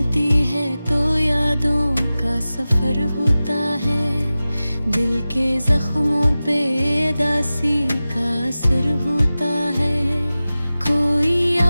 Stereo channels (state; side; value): inverted; both; correlation -0.96